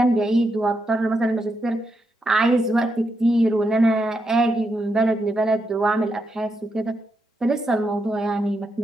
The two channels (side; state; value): both; normal; correlation 0.83